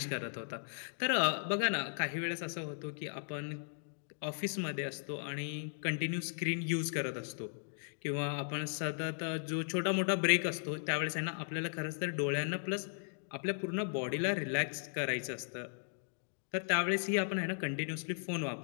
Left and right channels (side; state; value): right; silent; digital silence